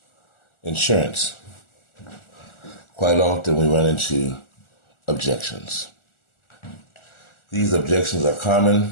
insurance, quite often we run into objections. These objections are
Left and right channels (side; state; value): right; late; 1.4 ms